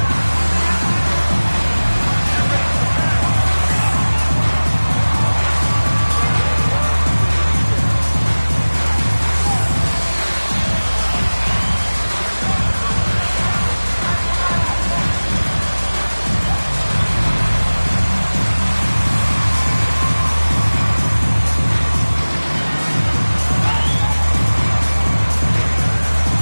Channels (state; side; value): inverted; both; correlation -1.00